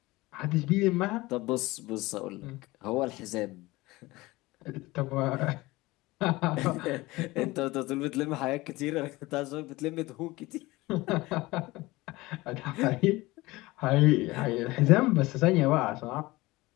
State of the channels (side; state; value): right; quieter; 20.5 dB